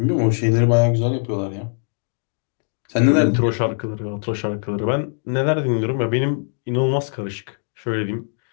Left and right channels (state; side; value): silent; right; 65 dB below the other